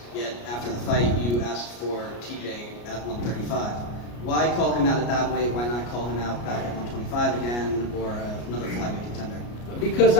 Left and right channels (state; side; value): late; right; 33 ms